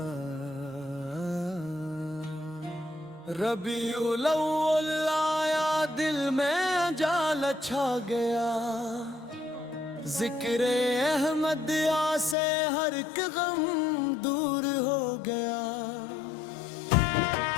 الاول آیا دل میں جال چھا گیا، ذکر احمد آ سے ہر ایک غم دور ہو گیا۔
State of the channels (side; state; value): right; drops out; at 12.4 s